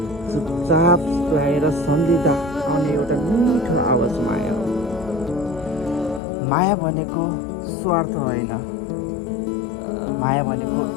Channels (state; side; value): drops out; right; at 6.2 s